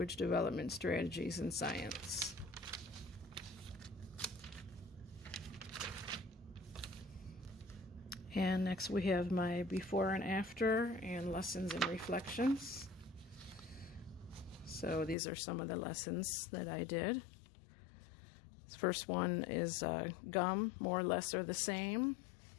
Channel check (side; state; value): right; drops out; at 15.2 s